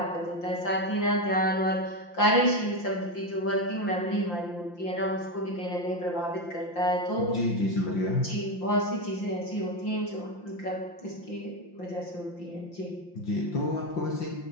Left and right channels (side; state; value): right; late; 5.7 ms